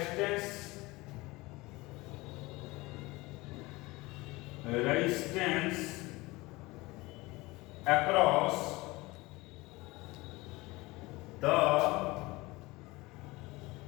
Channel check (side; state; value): right; quieter; 21.8 dB